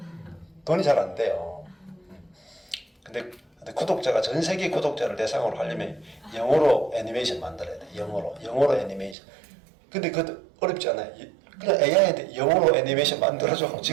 돈이 잘 안 돼요. 근데 구독자가 전 세계 구독자를 대상으로 하려면 영어로 애니메이션 만들어야 돼. 영어로 애니메이션. 근데 그것도 어렵지 않아요. 그냥 AI한테 영어로 애니메이션 만들어줘.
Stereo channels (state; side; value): drops out; left; at 9.2 s